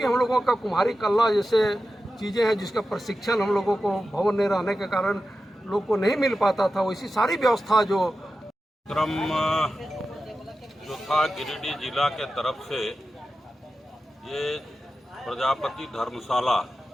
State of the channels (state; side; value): normal; both; correlation 0.92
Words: हम लोगों का कुम्हारी कला जैसे चीज़ें हैं जिसका प्रशिक्षण हम लोगों को भवन नहीं रहने के कारण लोग को नहीं मिल पाता था, वैसी सारी व्यवस्था जो क्रम जो था गिरिडीह जिला के तरफ से ये प्रजापति धर्मशाला